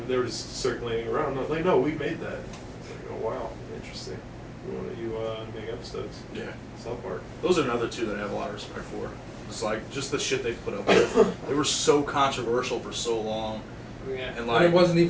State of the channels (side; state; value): both; identical; correlation 1.00